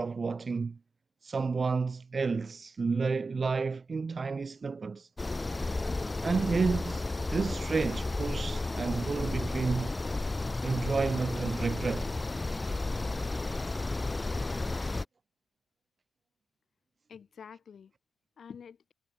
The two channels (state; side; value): normal; both; correlation 0.93